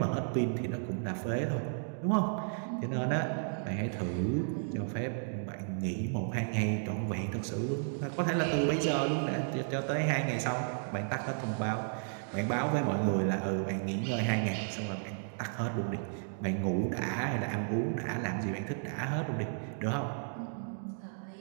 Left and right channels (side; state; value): left; silent; digital silence